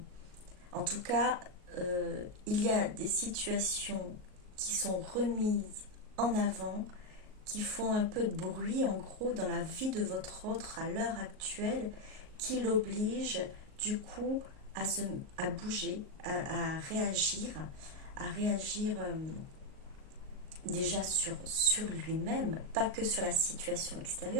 en tout cas, il y a des situations qui sont remises en avant, qui font un peu de bruit, en gros, dans la vie de votre autre à l'heure actuelle, qui l'oblige, du coup, à bouger, à réagir, déjà sur lui-même, pas que sur la situation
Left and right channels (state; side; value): late; left; 38 ms